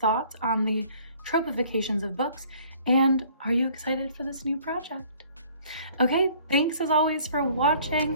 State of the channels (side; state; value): both; inverted; correlation -0.55